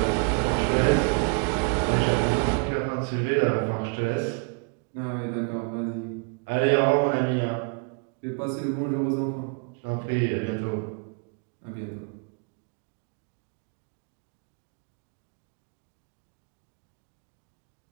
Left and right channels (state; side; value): quieter; left; 35.3 dB